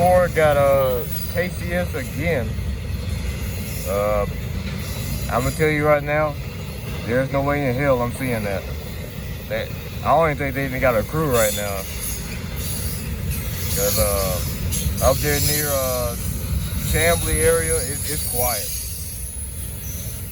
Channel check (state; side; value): identical; both; correlation 1.00